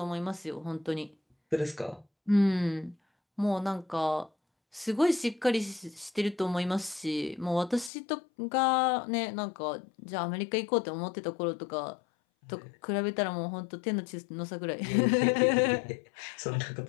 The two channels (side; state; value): right; drops out; at 7.9 s